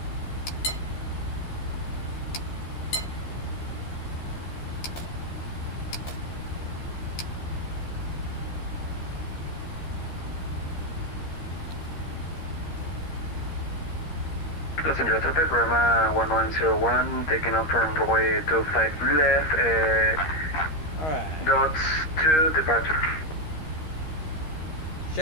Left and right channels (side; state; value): right; late; 13 ms